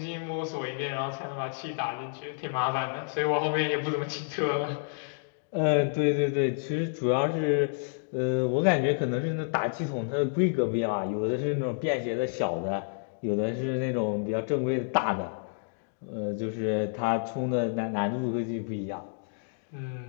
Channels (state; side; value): silent; right; digital silence